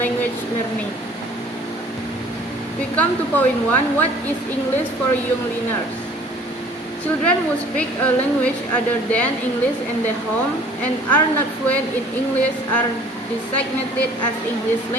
language learning. We come to point 1, what is English for young learners? Children who speak a language other than English in their home and are not fluent in English are designated as English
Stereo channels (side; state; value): both; normal; correlation 0.52